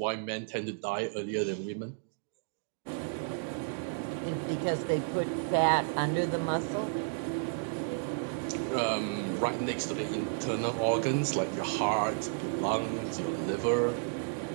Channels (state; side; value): silent; left; digital silence